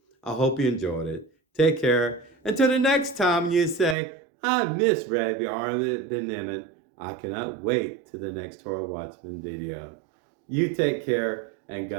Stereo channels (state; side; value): drops out; left; at 4.0 s